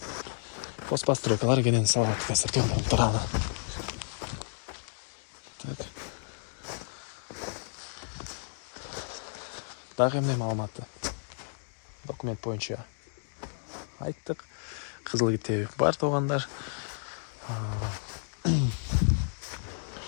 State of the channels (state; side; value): silent; right; digital silence